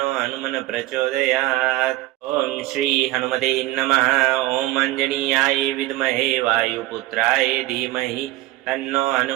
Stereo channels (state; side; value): quieter; left; 17.6 dB